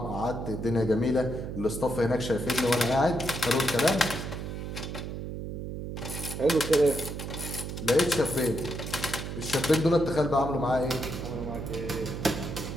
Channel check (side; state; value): right; noise; hum, 6 dB below the sound